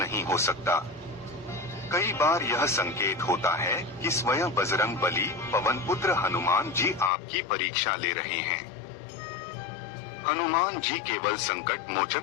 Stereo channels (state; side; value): drops out; right; at 7.1 s